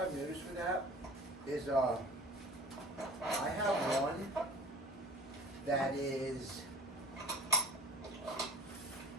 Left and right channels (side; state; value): both; normal; correlation 0.43